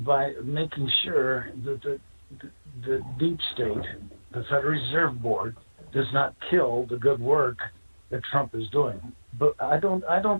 by making sure that the deep state, the Federal Reserve Board, does not kill the good work that Trump is doing. But I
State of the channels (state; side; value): inverted; both; correlation -1.00